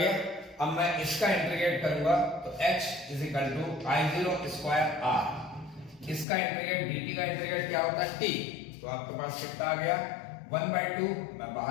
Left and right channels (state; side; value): drops out; right; at 6.2 s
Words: अब मैं इसका इंटीग्रेट करूंगा तो h is equal to I0 square r, इसका इंटीग्रेट dt का इंटीग्रेट क्या होता है t, तो आपके पास कितना आ गया 1/2, मैं